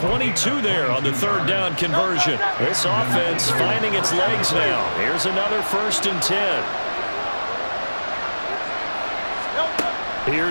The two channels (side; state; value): both; inverted; correlation -1.00